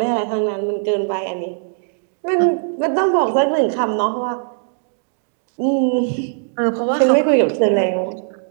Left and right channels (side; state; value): left; silent; digital silence